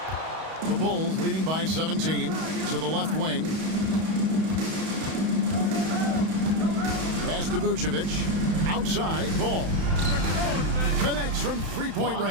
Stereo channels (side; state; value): left; late; 31 ms